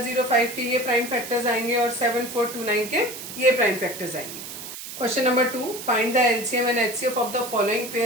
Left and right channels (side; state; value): right; noise; hiss, 10 dB below the sound